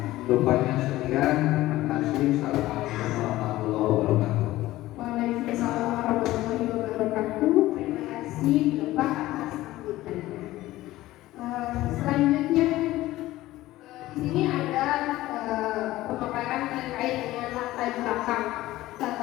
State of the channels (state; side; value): quieter; right; 16.6 dB